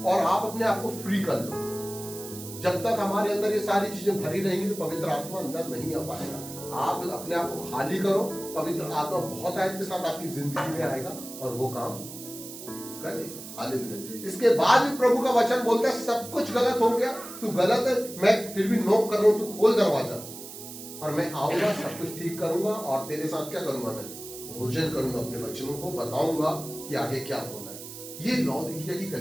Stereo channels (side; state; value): right; noise; hiss, 12 dB below the sound